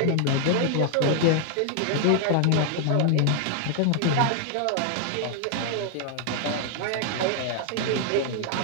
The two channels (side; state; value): both; different; correlation 0.00